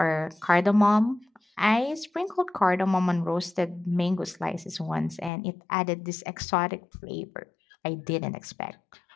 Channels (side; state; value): right; drops out; at 5.3 s